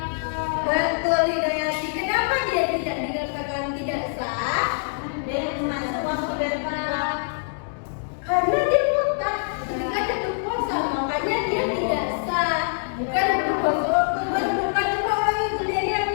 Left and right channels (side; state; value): right; silent; digital silence